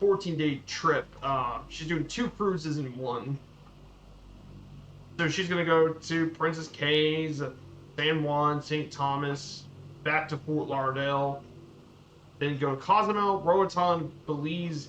14-day trip. She's doing 2 cruises in one. So she's going to go to Princess Cays, San Juan, St. Thomas, back to Fort Lauderdale, then go to Cozumel, Roatan,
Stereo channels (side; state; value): both; identical; correlation 1.00